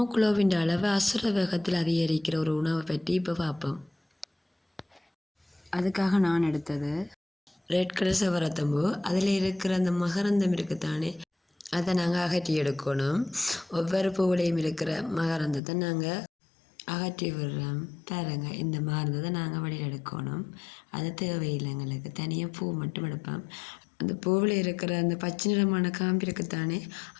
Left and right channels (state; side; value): drops out; right; at 15.6 s